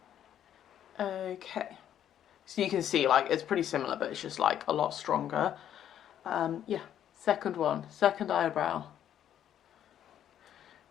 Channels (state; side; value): quieter; right; 10.4 dB